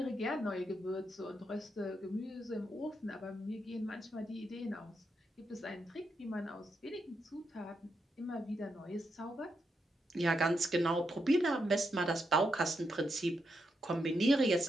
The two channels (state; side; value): normal; both; correlation 0.82